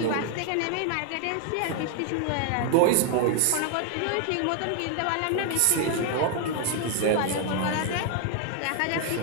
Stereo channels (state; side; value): different; both; correlation 0.00